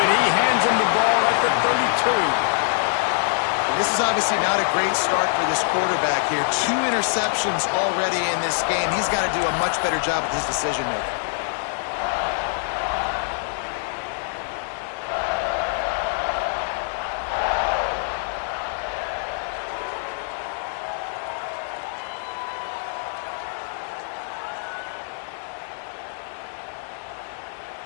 he hands him the ball at the 32. And this is obviously not a great start for this quarterback here. 2 interceptions already in this game. He's got to do a much better job with his decision-making.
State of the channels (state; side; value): silent; right; 61 dB below the other